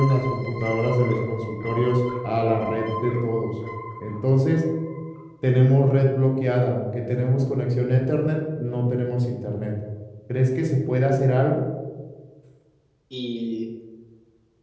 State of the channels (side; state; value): both; identical; correlation 1.00